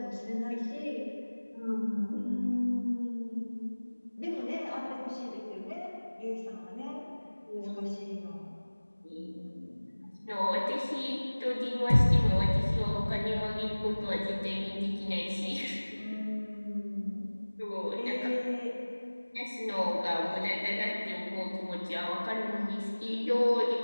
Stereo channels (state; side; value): inverted; both; correlation -1.00